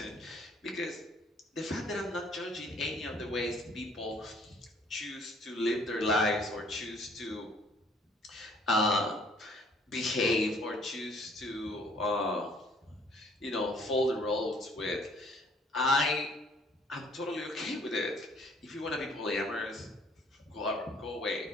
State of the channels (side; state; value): both; normal; correlation 0.60